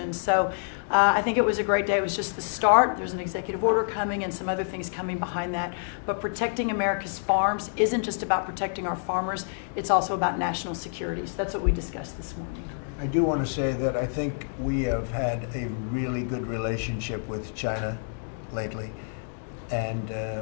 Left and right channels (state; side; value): silent; right; digital silence